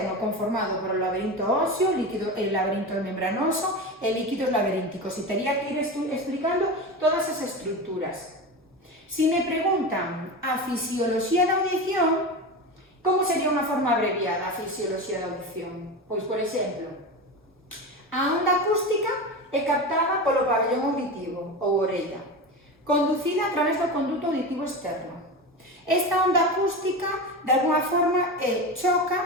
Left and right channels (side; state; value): both; normal; correlation 0.24